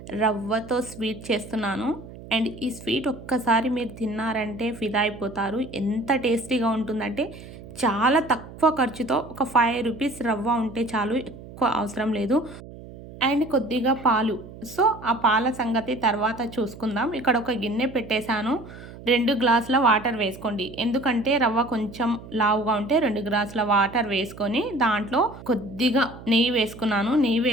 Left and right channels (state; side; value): noise; right; hum, 16 dB below the sound